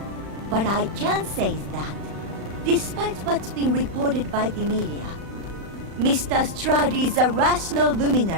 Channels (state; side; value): late; left; 35 ms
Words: What I can say is that, despite what's been reported by the media, Mr. Stroud is a rational